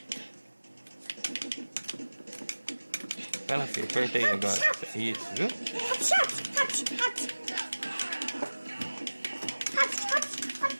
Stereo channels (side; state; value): both; inverted; correlation -1.00